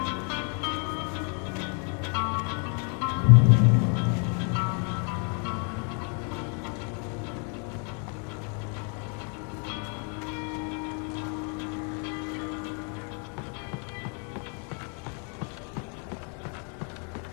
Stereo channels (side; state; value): right; quieter; 39.2 dB